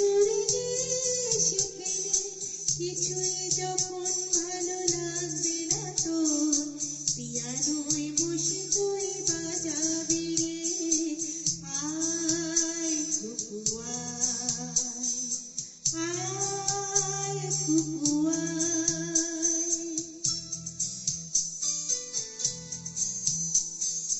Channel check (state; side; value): identical; both; correlation 1.00